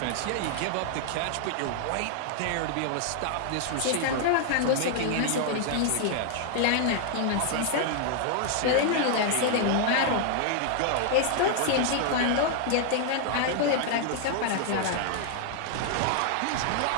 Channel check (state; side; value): different; both; correlation 0.00